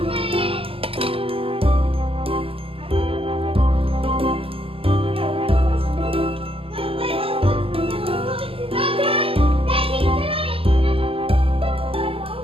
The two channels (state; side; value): late; left; 0.27 ms